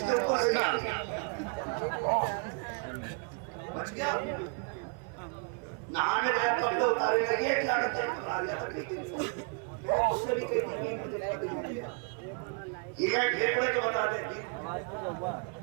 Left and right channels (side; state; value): left; quieter; 36.6 dB